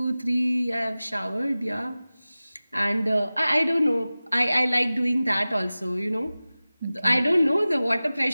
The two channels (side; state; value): both; inverted; correlation -0.97